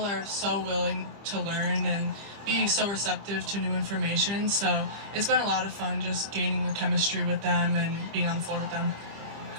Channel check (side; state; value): left; late; 25 ms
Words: are so willing to learn and be so receptive to new information. So it's been a lot of fun just gaining the chemistry with them and being on the floor with them.